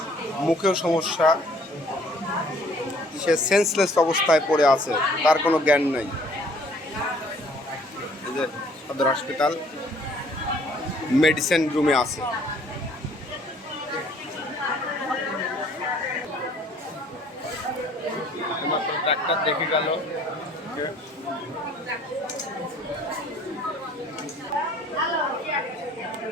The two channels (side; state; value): both; normal; correlation 0.58